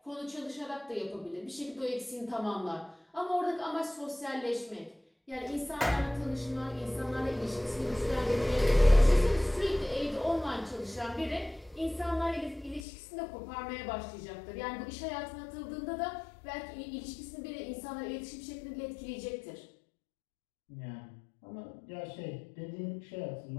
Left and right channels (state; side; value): drops out; right; at 12.8 s